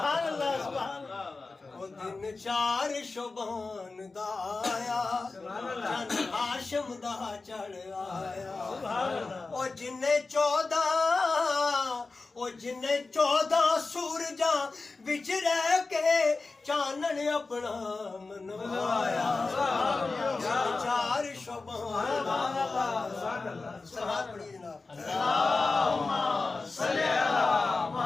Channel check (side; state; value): right; quieter; 3.8 dB